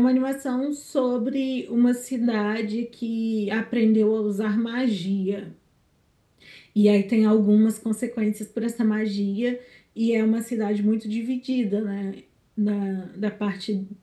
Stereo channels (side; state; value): both; identical; correlation 1.00